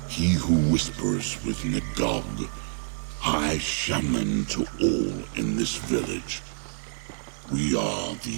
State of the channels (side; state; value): left; silent; digital silence